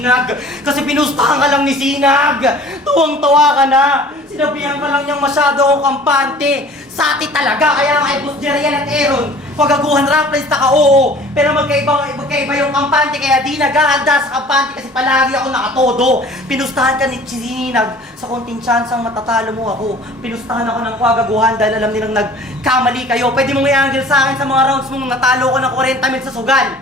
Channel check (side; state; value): both; normal; correlation 0.47